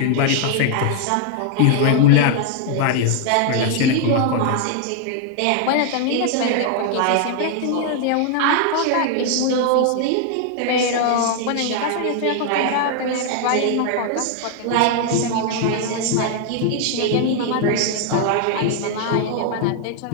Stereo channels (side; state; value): both; different; correlation 0.00